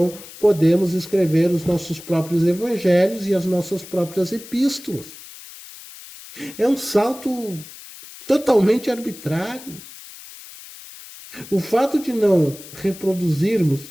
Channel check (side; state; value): left; noise; hiss, 17 dB below the sound